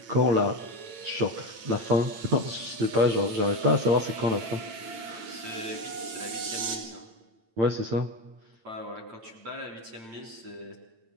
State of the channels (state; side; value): late; left; 8.8 ms